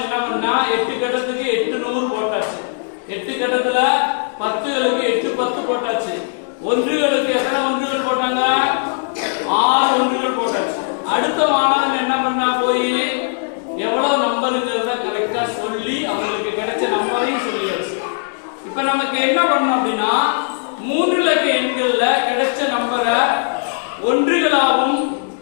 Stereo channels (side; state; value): right; silent; digital silence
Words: என்ன பண்ணா? 8 கட்டத்துக்கு 800 போட்டாச்சு. 8 கட்டத்துல 10களுக்கு 8 10 போட்டாச்சு. ஒன்றுகளுக்கு எத்தனை ஒன்றுகள் போட்டாங்க? 6 ஒன்றுகள் போட்டாச்சு. அடுத்த மாணவன் என்ன பண்ணா? போய் எவ்வளவு நம்பருங்கிறத கரெக்டா சொல்லி அவங்களுக்கு கிடைச்ச நம்பரையும் சொல்லியாச்சு. இப்ப நமக்கு என்ன பண்ணணும் அப்படின்னா 3 இலக்க எண்கள்ல கிடைச்ச நம்பரை ஒன்றுகளாகவும்